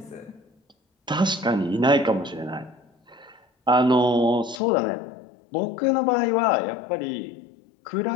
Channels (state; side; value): drops out; right; at 4.6 s